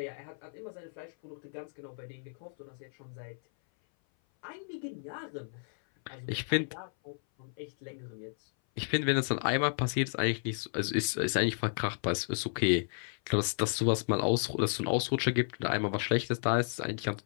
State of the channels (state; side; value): silent; right; 56 dB below the other